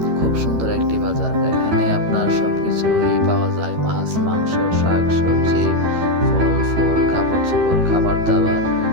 খুব সুন্দর একটি বাজার। এখানে আপনার সবকিছুই পাওয়া যায়, মাছ, মাংস, শাক সবজি, ফল ফুল, কাপড় চোপড়, খাবার দাবার,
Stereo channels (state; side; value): late; left; 13 ms